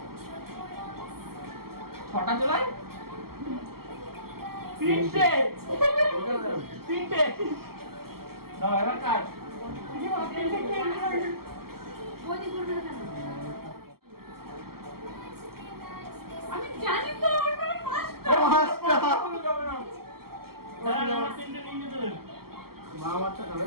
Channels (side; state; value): left; late; 0.94 ms